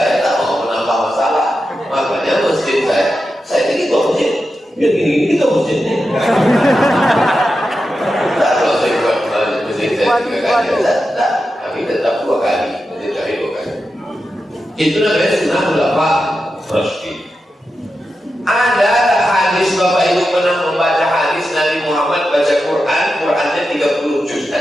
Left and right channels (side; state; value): both; normal; correlation 0.90